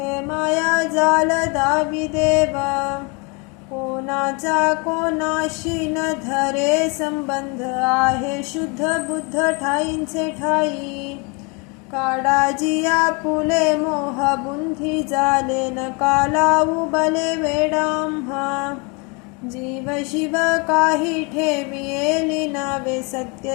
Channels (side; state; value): right; quieter; 31.3 dB